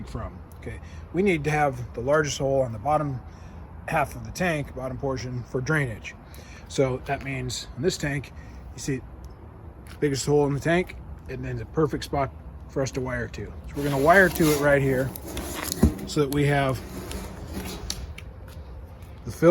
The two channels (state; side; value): identical; both; correlation 1.00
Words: from. Okay, we need to have the largest hole on the bottom half of the tank, bottom portion, for drainage. So that means in this tank, you see biggest hole in the tank, and then the perfect spot for us to wire to. So we're going to wire to it right here so that we have the